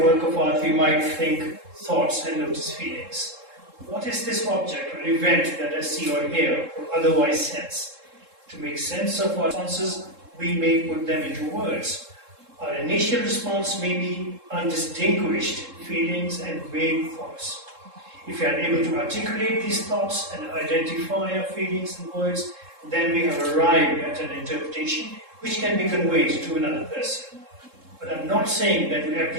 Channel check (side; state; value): left; late; 3.7 ms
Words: work of art, we might think thoughts and notice feelings. What is this object or event that I see or hear or otherwise sense? To make sense of our responses, we may put them into words. Our initial response may be undistinguished feelings and vague thoughts. If we are able to articulate these thoughts and identify our feelings in words, then we have arrived at an interpretation which can be conveyed to another person. But I'm not saying that to